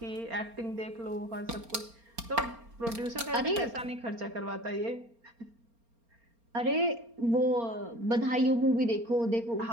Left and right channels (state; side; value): late; left; 4.3 ms